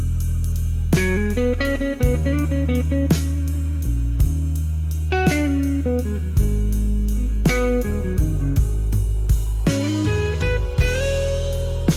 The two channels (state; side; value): identical; both; correlation 1.00